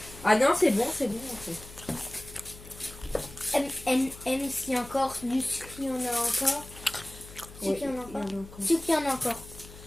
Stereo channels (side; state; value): left; noise; hum, 17 dB below the sound